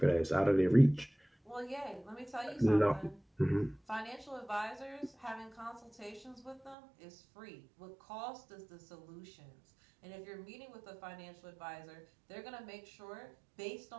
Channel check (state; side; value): drops out; left; at 6.8 s